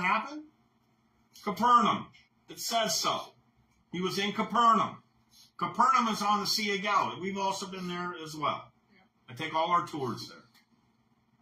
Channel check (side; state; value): both; identical; correlation 1.00